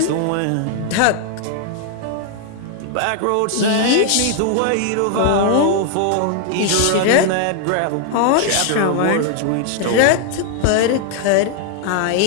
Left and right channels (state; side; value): different; both; correlation 0.00